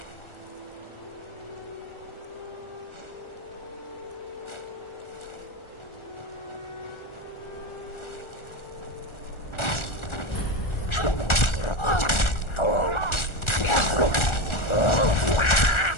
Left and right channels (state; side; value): late; right; 1.4 ms